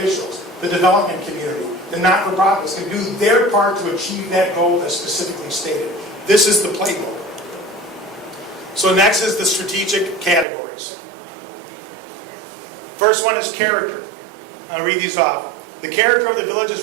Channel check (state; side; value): drops out; left; at 10.5 s